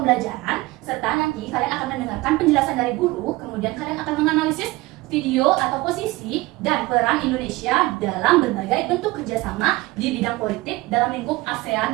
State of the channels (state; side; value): quieter; left; 20.8 dB